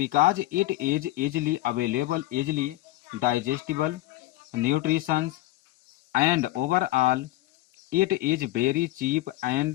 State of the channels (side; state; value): right; quieter; 17.1 dB